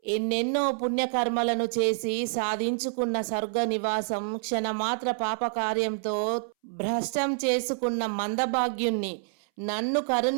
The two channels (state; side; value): silent; left; 60 dB below the other